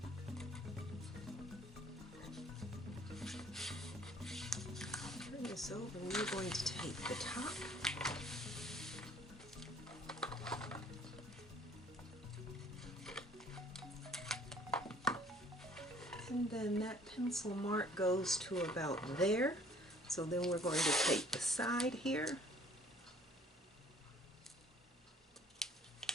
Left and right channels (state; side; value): normal; both; correlation 0.57